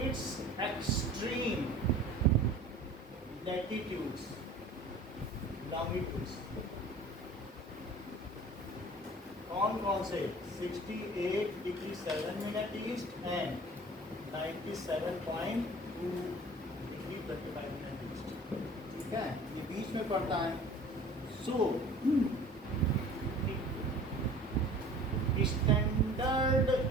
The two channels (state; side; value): normal; both; correlation 0.45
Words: its extreme latitudes, longitudes। कौन से? 68 degree 7 minute east and 97.2 degree 25 minute east. ठीक है, ये बीच में पड़ता है। So standard